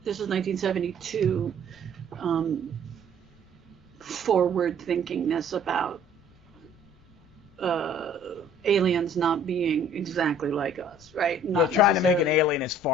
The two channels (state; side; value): noise; left; rumble, 29 dB below the sound